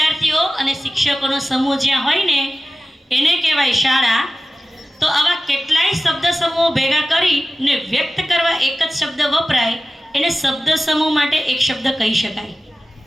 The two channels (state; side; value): normal; both; correlation 0.95